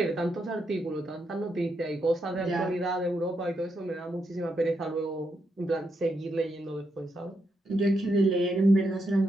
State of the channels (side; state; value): both; normal; correlation 0.81